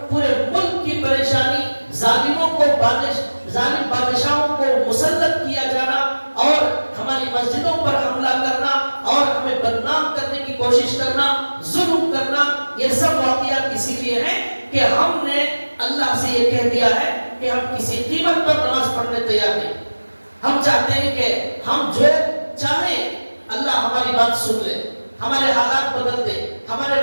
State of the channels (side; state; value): both; inverted; correlation -1.00